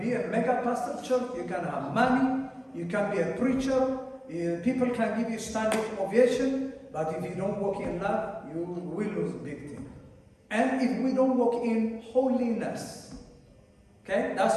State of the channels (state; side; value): identical; both; correlation 1.00